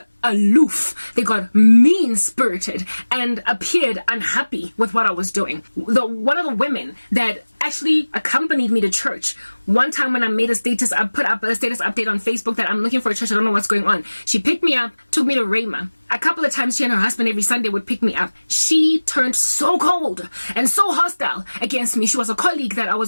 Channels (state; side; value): inverted; both; correlation -1.00